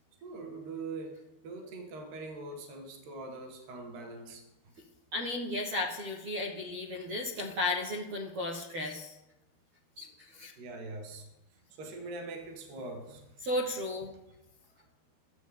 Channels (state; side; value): late; left; 12 ms